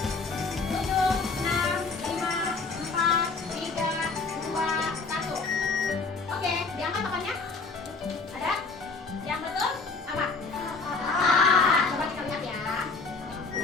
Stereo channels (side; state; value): right; quieter; 4.2 dB